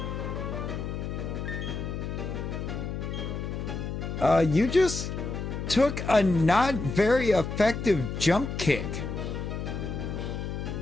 You just took a not very effective jump kick.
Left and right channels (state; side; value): noise; left; hum, 4 dB below the sound